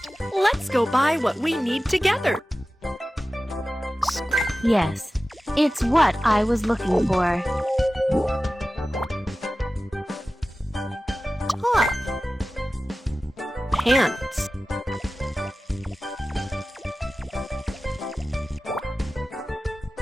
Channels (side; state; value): both; normal; correlation 0.95